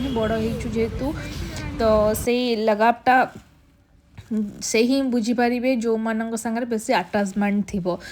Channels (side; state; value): both; identical; correlation 1.00